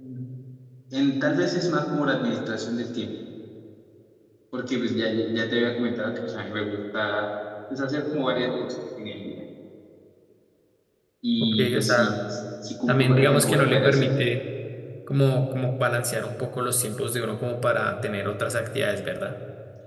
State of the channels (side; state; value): both; identical; correlation 1.00